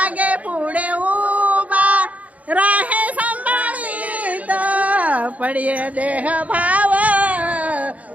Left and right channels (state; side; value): late; left; 0.070 ms